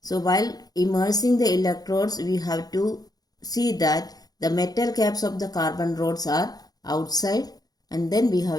So while immersing the electrodes, we have to see that the metal caps of the carbon rods are outside, and then we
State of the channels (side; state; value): right; late; 0.19 ms